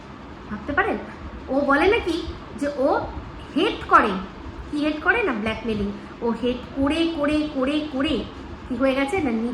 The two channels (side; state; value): both; identical; correlation 1.00